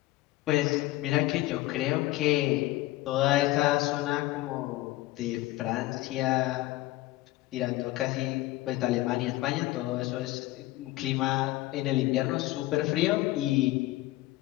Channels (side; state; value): right; quieter; 18.0 dB